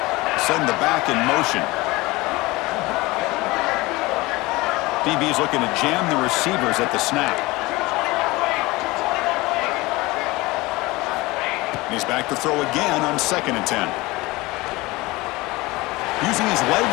Send the back in motion. DB's looking to jam the receivers at the snap. He's back to throw again on 2nd and 10. Using his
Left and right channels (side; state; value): right; quieter; 21.5 dB